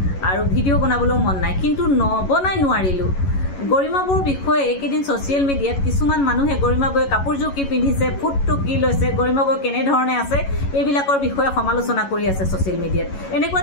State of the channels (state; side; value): late; right; 11 ms